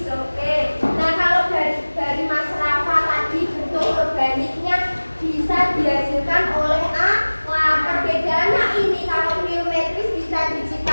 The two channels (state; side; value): inverted; both; correlation -1.00